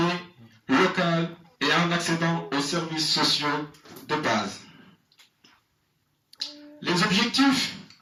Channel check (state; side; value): identical; both; correlation 1.00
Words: locale et en accédant aux services sociaux de base. Les objectifs